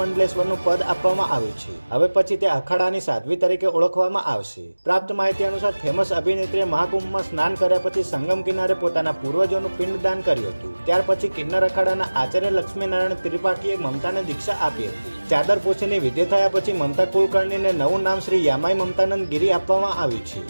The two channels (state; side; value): inverted; both; correlation -1.00